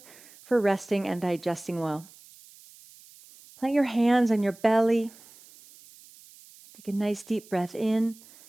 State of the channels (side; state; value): right; noise; hiss, 23 dB below the sound